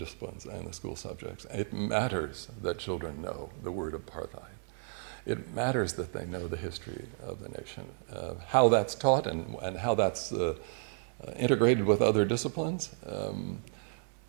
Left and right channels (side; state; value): left; silent; 56 dB below the other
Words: and the school subjects. It matters that children know the word apartheid. It matters that they know the history of the nation, how that's taught and how that's integrated with other disciplines.